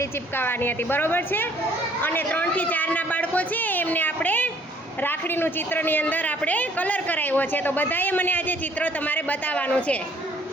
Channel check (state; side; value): normal; both; correlation 0.60